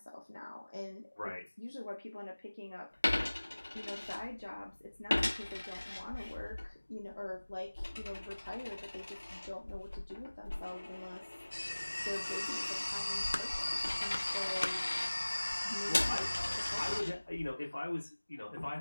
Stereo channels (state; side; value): inverted; both; correlation -1.00